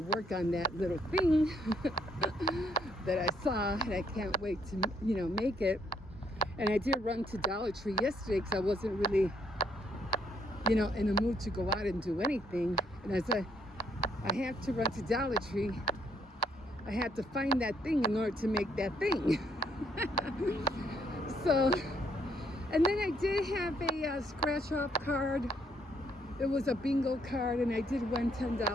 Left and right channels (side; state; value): both; normal; correlation 0.71